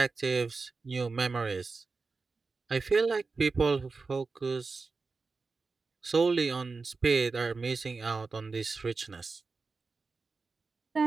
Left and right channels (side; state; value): left; quieter; 4.2 dB